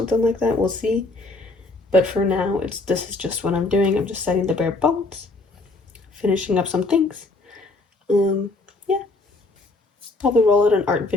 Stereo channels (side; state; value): right; quieter; 3.2 dB